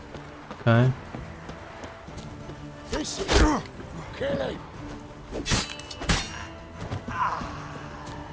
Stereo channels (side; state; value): both; identical; correlation 1.00